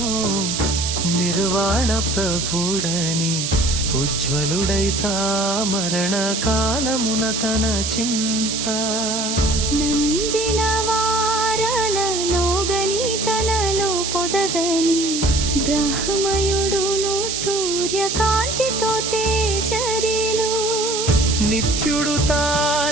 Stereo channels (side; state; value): right; noise; hiss, 2 dB below the sound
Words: నిర్వాణ ప్రభుడని ఉజ్వలుడైతా మరణ కాలమున తన చింత నందిన వారలలోగని తనలో పొదగని బ్రహ్మయుడును సూర్యకాంతితో తేజరిలు నిత్యుడు